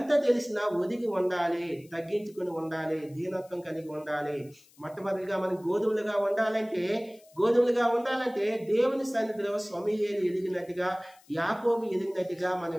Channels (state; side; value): noise; left; hiss, 28 dB below the sound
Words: ఒదిగి ఉండాలి, తగ్గించుకుని ఉండాలి, దీనత్వం కలిగి ఉండాలి. మొట్టమొదటిగా మనం గోధుమలుగా ఉండాలంటే దేవుని సన్నిధిలో సమూయేలు ఎదిగినట్టుగా, యాకోబు ఎదిగినట్టుగా మనం